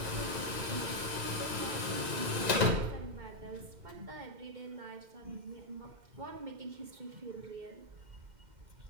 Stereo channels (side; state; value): left; late; 1.9 ms